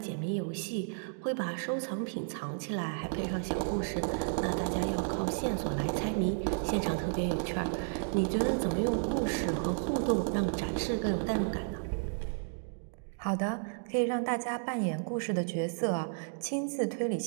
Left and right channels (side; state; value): left; silent; digital silence